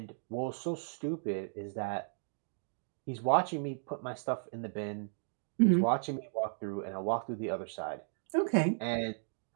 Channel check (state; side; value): silent; left; digital silence